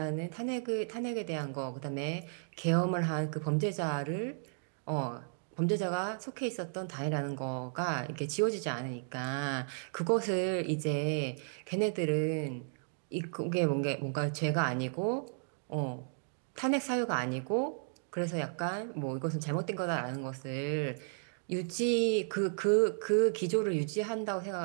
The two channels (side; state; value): left; silent; digital silence